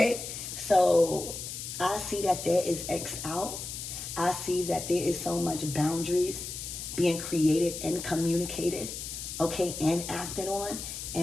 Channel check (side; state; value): left; noise; hiss, 7 dB below the sound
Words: So I see that there is X out. I see that there is so much boundaries being created and communicated, okay, and acted on.